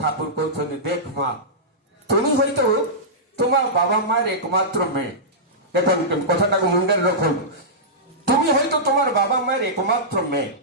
ଠାକୁର କହୁଛନ୍ତି, ଦେଖ ମା, তুমি হয়তো তোমার বাবা মায়ের একমাত্র মেয়ে। দেখুন কথাটাকে মুন্ডের রাখুন, তুমি হয়তো তোমার বাবা মায়ের একমাত্র মেয়ে,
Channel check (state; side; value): normal; both; correlation -0.15